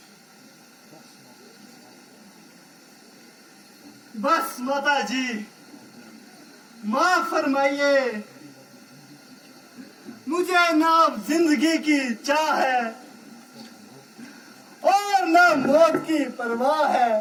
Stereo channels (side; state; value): both; identical; correlation 1.00